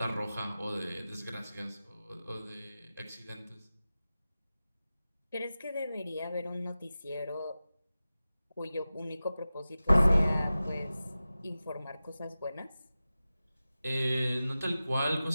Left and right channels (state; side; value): inverted; both; correlation -0.95